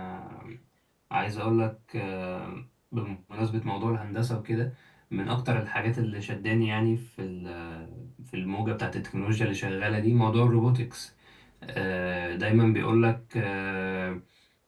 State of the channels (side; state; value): both; identical; correlation 1.00